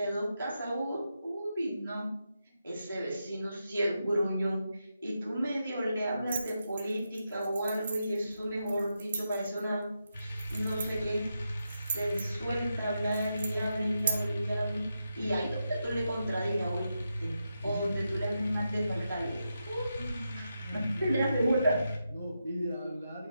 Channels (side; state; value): both; inverted; correlation -0.87